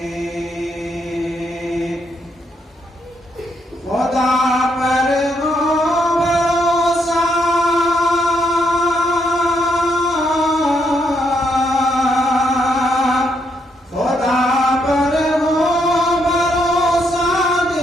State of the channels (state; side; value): normal; both; correlation 0.76